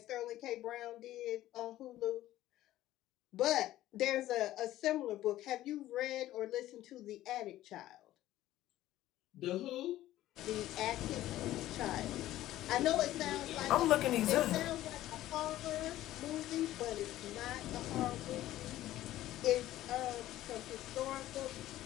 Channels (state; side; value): quieter; right; 14.5 dB